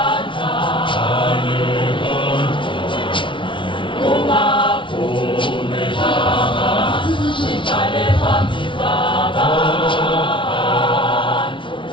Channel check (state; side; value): late; right; 0.24 ms